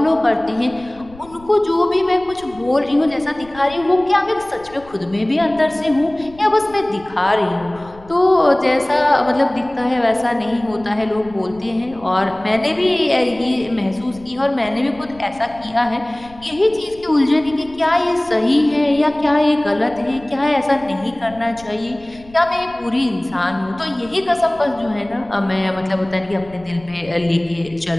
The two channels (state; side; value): noise; left; rumble, 22 dB below the sound